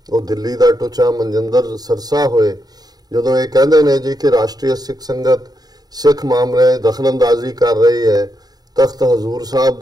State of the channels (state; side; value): late; left; 0.19 ms